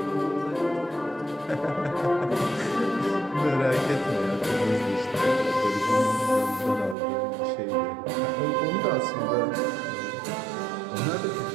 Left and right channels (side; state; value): left; drops out; at 7.0 s